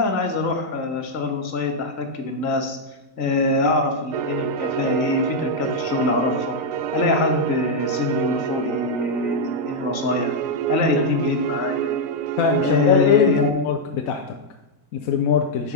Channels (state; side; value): late; right; 1.7 ms